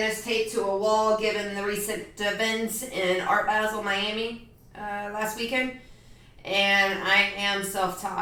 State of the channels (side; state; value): both; identical; correlation 1.00